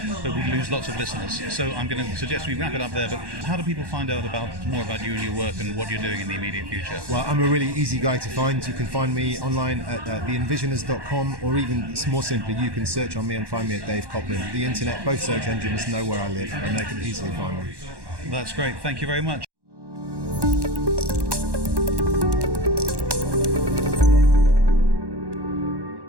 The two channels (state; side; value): late; left; 1.1 ms